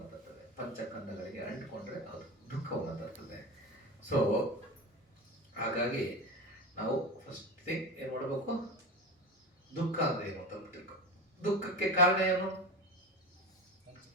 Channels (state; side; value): normal; both; correlation 0.25